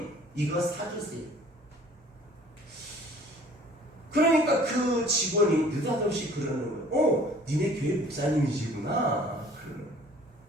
이거 사주세요. 그러니까 그 직원이 느닷없이 그러는 거예요. 니네 교회 목사님이시구나. 그러는 거예요.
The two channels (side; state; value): both; normal; correlation 0.52